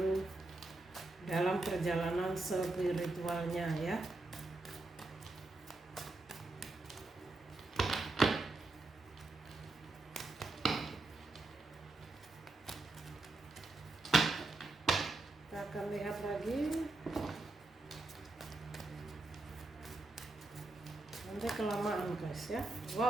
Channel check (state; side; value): quieter; left; 3.0 dB